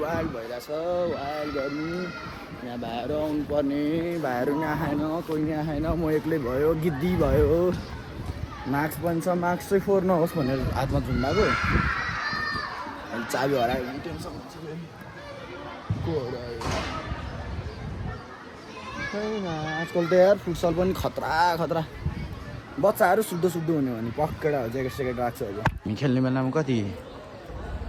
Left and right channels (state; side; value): identical; both; correlation 1.00